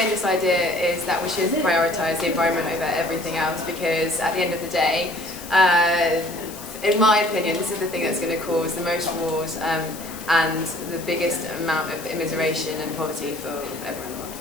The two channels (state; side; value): noise; left; hiss, 14 dB below the sound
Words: idea is that we should prioritise the environment over everything else, because at the end of the day, in my opinion, this is the thing that's going to cause the most wars and the biggest amount of immiseration and poverty for everyone.